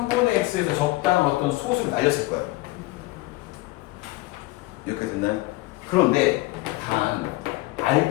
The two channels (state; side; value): quieter; right; 20.5 dB